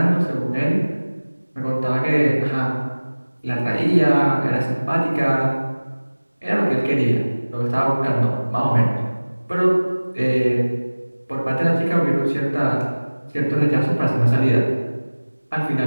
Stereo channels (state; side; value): inverted; both; correlation -1.00